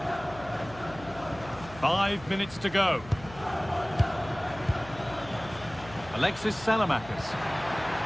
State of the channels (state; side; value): noise; left; hum, 17 dB below the sound